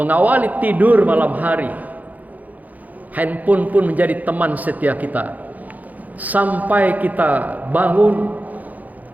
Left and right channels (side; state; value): left; late; 0.080 ms